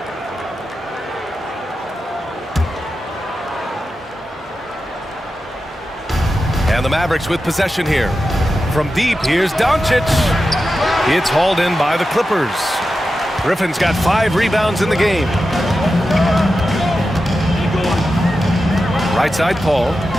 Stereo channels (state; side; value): normal; both; correlation 0.91